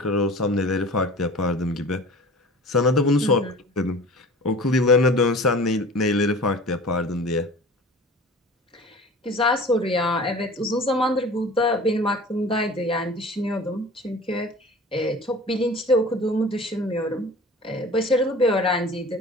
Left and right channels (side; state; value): both; normal; correlation 0.41